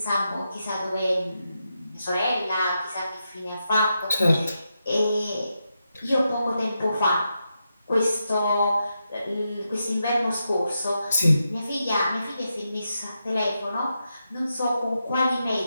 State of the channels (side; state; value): both; inverted; correlation -0.86